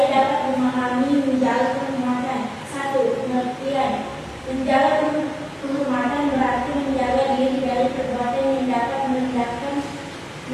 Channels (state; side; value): identical; both; correlation 1.00